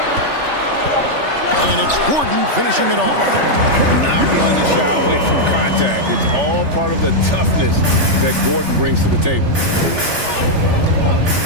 And it's Gordon finishing it off. Not one to shy away from contact. It's all part of the toughness that Gordon brings to the table.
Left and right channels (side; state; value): left; late; 3.4 ms